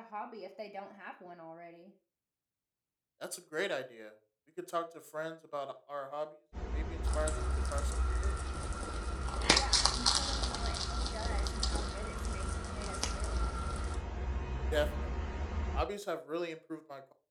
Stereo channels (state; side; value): identical; both; correlation 1.00